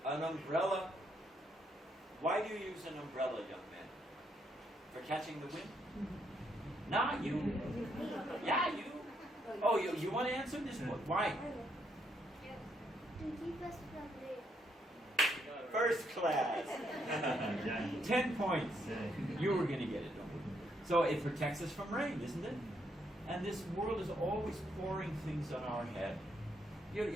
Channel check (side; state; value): both; normal; correlation 0.75